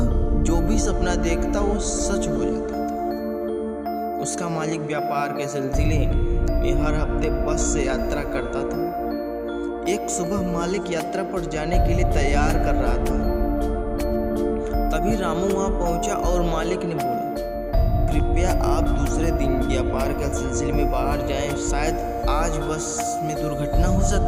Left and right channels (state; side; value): identical; both; correlation 1.00